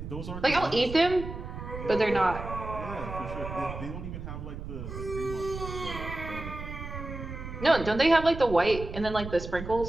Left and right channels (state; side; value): noise; right; rumble, 9 dB below the sound